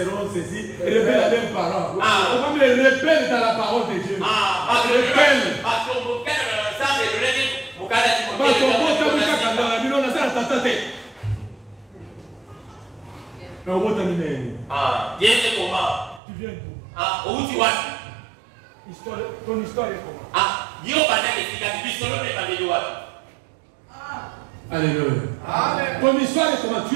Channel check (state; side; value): drops out; left; at 16.2 s